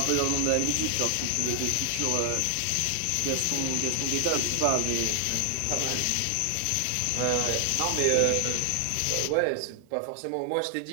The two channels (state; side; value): different; both; correlation 0.00